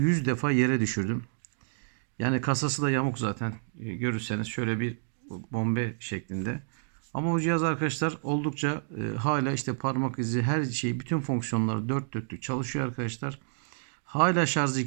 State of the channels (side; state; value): left; silent; digital silence